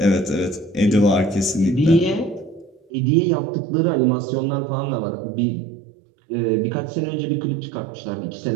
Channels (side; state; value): left; drops out; at 2.8 s